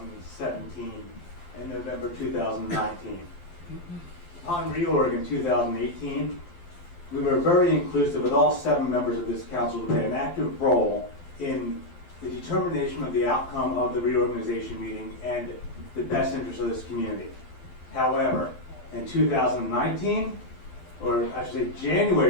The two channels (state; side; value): late; right; 12 ms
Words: and November 2019. Upon reorg in 2018, we were very inclusive with all 7 members of this council to play an active role in the determination of the outcome of the reorganization meeting and the best interest of this community. However, in 2019, or I should say